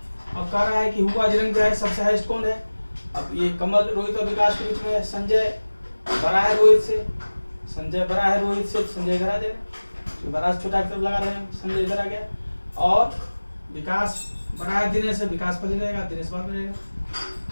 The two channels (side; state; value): both; inverted; correlation -1.00